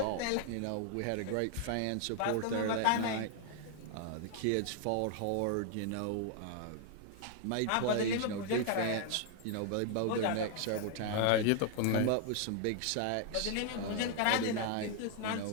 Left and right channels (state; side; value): different; both; correlation 0.00